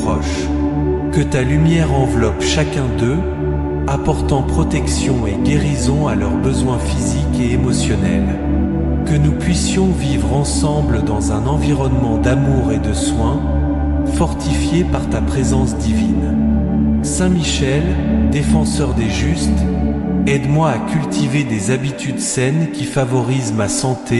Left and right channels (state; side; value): identical; both; correlation 1.00